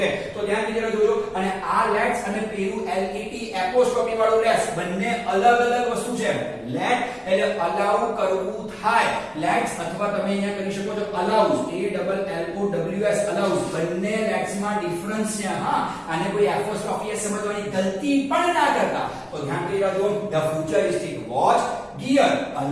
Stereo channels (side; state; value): both; identical; correlation 1.00